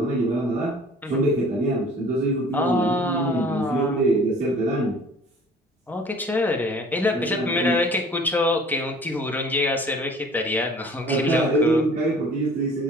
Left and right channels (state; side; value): normal; both; correlation 0.50